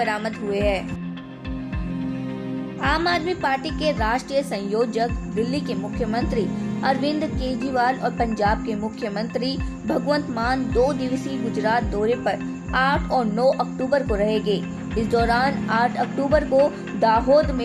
हुए हैं। आम आदमी पार्टी के राष्ट्रीय संयोजक, दिल्ली के मुख्यमंत्री अरविंद केजरीवाल और पंजाब के मुख्यमंत्री भगवंत मान 2 दिवसीय गुजरात दौरे पर 8 और 9 अक्टूबर को रहेंगे। इस दौरान 8 अक्टूबर को दाहोद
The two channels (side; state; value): both; identical; correlation 1.00